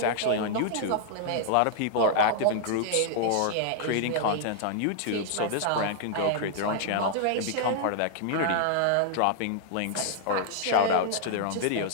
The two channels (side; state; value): both; different; correlation -0.01